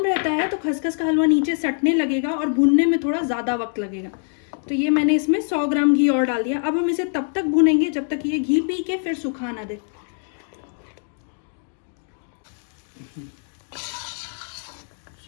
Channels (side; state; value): right; silent; 61 dB below the other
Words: रहता है तो खसखस का हलवा नीचे सटने लगेगा और भुनने में थोड़ा ज़्यादा वक्त लगेगा। तो ये मैंने इसमें 100 ग्राम घी और डाल दिया। अब हम इसे तब तक भुनेंगे जब तक ये घी पी के फिर सुखा ना दे।